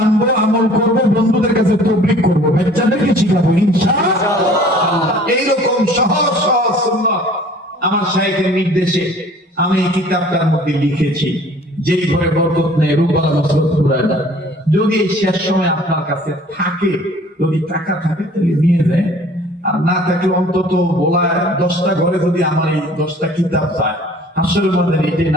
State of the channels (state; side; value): normal; both; correlation 0.51